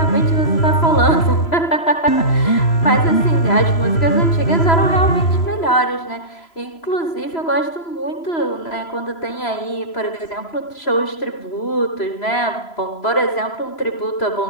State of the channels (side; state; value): right; late; 3.0 ms